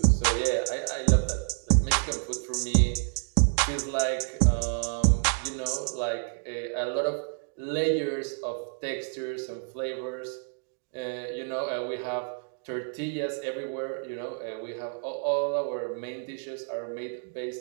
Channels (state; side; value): silent; left; 59 dB below the other